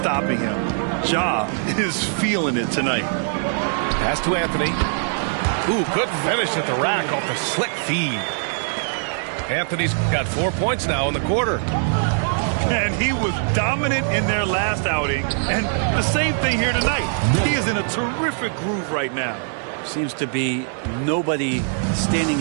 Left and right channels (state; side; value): silent; left; 64 dB below the other